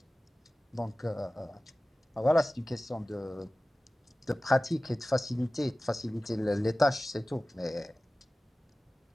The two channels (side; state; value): both; normal; correlation 0.96